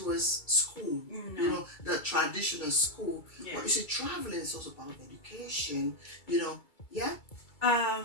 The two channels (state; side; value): late; right; 2.3 ms